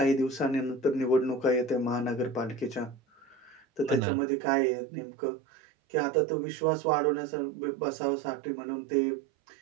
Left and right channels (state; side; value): drops out; left; at 4.0 s